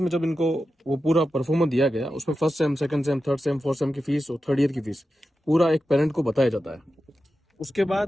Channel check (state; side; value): normal; both; correlation 0.91